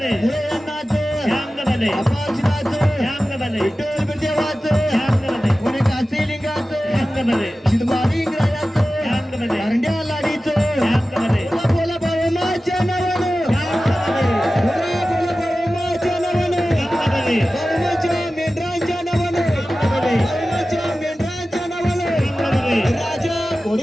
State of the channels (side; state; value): both; normal; correlation 0.95